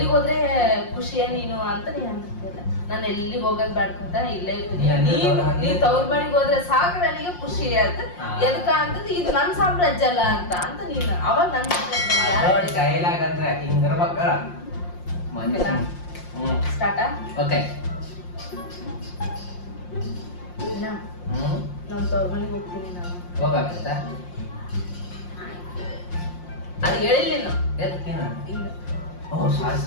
ಹೋದ್ರೆ ಖುಷಿಯ ನೀನು ಅಂತ ನೀನು ಅಂತಿರ್ತಿಲ್ಲ. ನಾನು ಎಲ್ಲಿಗೆ ಹೋಗೋದ್ ಬೇಡ್ಕಂತ ಇಲ್ಲೇ ಇರ್ತೀನಿ. ನೀ ತವ್ರ ಮನೆಗೆ ಹೋದ್ರೆ ಸಾಕು ನನಗೆ ಖುಷಿ ಅಂತ. ಎದಕ್ಕ ಅಂತಂದ್ರೆ ಇದು ನನ್ ಸಾಮ್ರಾಜ್ಯ ಅಲ್ಲ ಅಂತ ನೀನು ಅವಾಗ ನನ್ ಸ್ಟಾರ್ಟಾ? ಓಕೆ, ನಮ್ ತವ್ರ ಮನೆಗೆ ಹೋಗ್ತೀನಿ ನಾನು. ಹೋಗ್ಬೇಕಾಯ್ತಾ? ಅದು ಹೇಳಿಲ್ಲ ನೀನು. ಎದಕ್ಕೇನು? ಓ ಸಾರಿ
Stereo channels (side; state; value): right; late; 5.6 ms